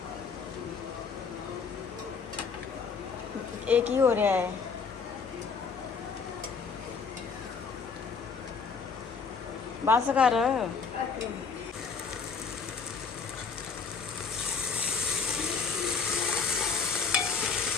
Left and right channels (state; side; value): quieter; right; 5.5 dB